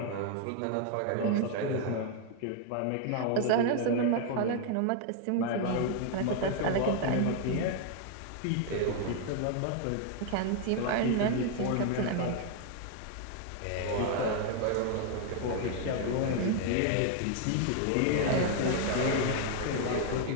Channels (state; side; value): different; both; correlation 0.00